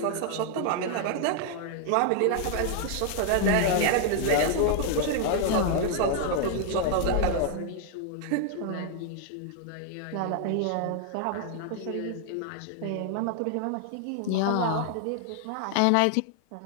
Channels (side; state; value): both; different; correlation 0.00